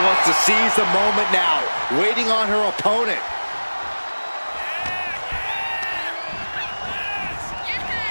to seize the moment now, waiting on her opponent.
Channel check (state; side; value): inverted; both; correlation -1.00